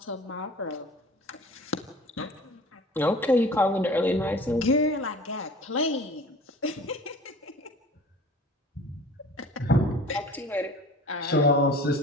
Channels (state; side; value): normal; both; correlation 0.43